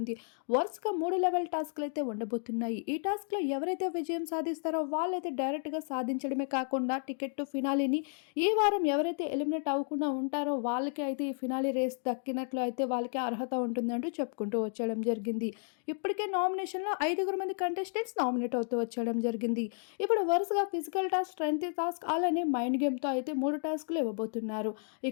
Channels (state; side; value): silent; right; 56 dB below the other